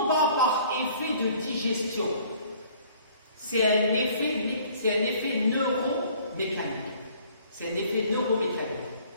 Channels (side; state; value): both; inverted; correlation -0.56